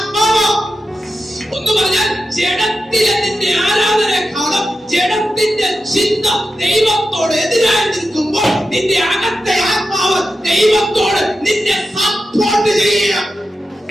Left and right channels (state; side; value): normal; both; correlation 0.90